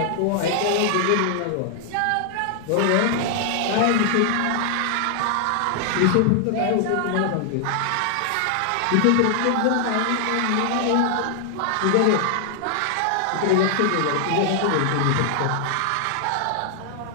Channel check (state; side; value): different; both; correlation 0.00